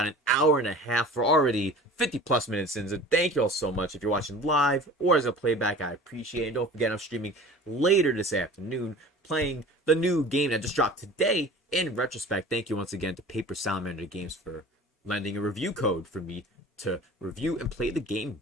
an hour and a half. We're already 50 plus minutes in. So thank you all so much. If you're watching live or as a playback, I appreciate it. And don't forget, I'm streaming later this afternoon, playing the new game that just dropped today, in retrospect, thank you once again to Paper Salamander Games for lending a review code for me to review and play the game.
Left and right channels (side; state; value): both; normal; correlation 0.42